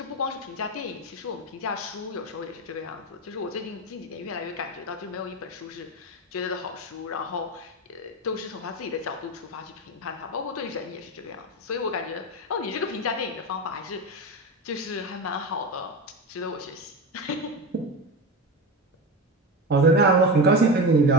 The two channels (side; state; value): both; normal; correlation 0.21